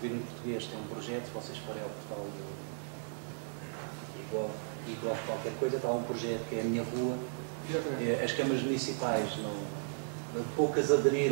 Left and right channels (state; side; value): silent; left; 54 dB below the other